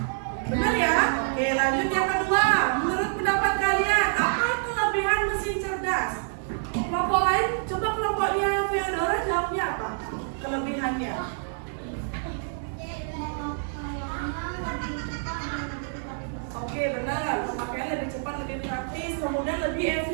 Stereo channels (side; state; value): left; silent; digital silence